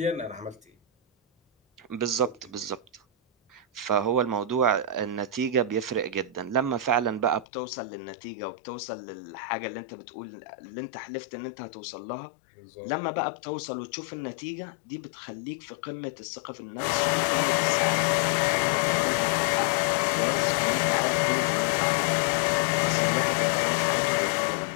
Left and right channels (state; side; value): drops out; right; at 7.5 s